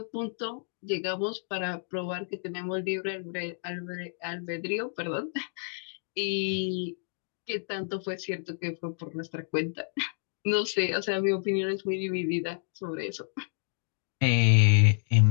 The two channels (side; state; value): right; silent; digital silence